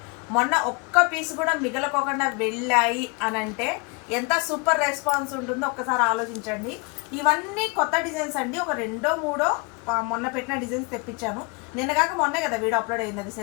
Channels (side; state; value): right; quieter; 29.7 dB